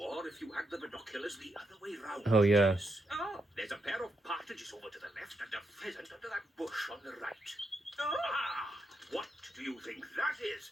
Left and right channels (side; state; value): both; normal; correlation 0.82